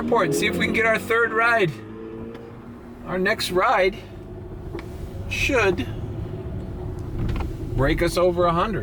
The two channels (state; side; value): identical; both; correlation 1.00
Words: and see if we can get our third ride. Our next ride should break us over